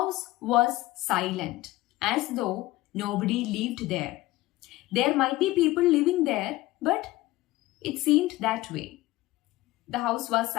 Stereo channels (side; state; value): right; quieter; 18.1 dB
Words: was silent, as though nobody lived there. There might be people living there, but it seemed that way. The house was